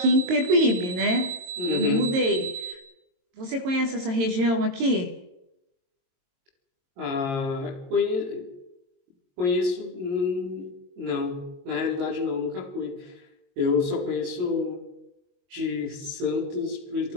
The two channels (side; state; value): left; late; 22 ms